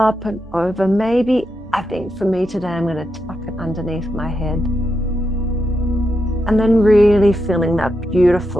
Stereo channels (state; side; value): normal; both; correlation 0.85